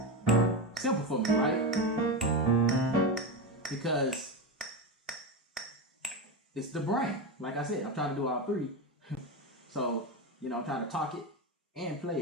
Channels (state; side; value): normal; both; correlation 0.16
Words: for me, right? Because it's the brain. Like I said, I'm trying to do all three. So, I'm trying to talk it and